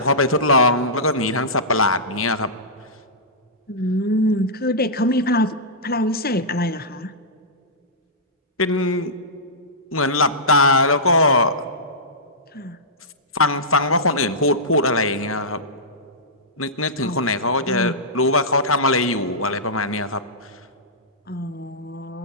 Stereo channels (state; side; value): normal; both; correlation -0.15